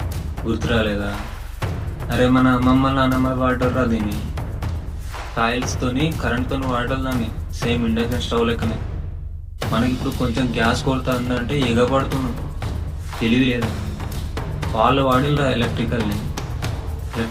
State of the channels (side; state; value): both; identical; correlation 1.00